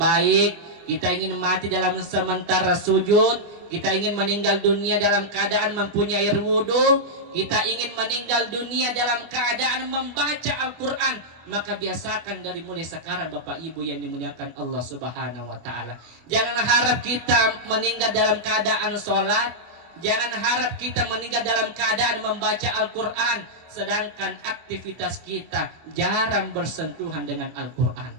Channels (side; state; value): left; late; 25 ms